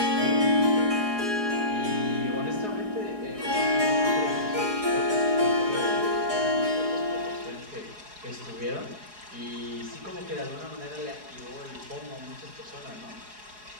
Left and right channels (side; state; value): left; late; 4.8 ms